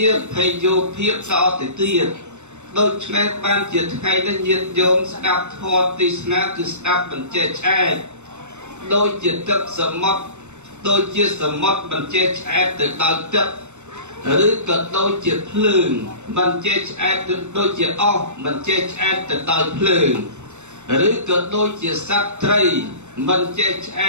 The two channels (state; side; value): late; left; 0.83 ms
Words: ាភ័យយោភាពតទៅទៀត ដូចនេះបានជាថ្ងៃនេះញាតិញោមស្ដាប់ធម៌ទេសនាគឺស្ដាប់បញ្ជាឆ្អែតដូចជាទឹកសមុទ្រដូចជាសមុទ្របញ្ជាឆ្អែតទៅដល់ទឹកឬក៏ដូចជាភ្លើងបញ្ជាឆ្អែតដូចជាអស់បញ្ជាឆ្អែតទៅដល់ភ្លើងឬក៏ដូចជាសត្វត្រីបញ្ជាឆ្អ